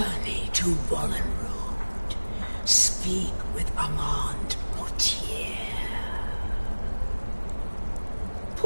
to Wallen Road. Speak with Armand Mortier.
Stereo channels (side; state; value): both; inverted; correlation -1.00